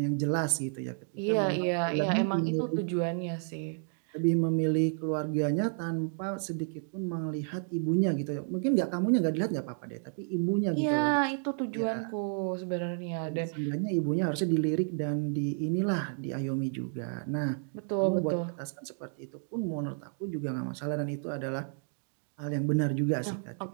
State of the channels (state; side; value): silent; left; 57 dB below the other